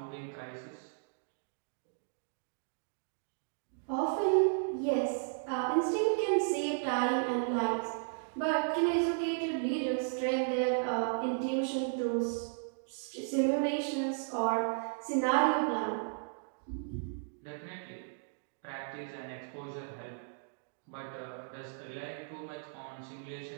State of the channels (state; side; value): silent; left; digital silence